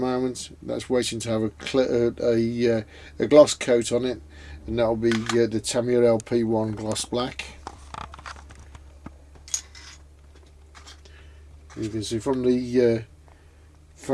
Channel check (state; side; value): identical; both; correlation 1.00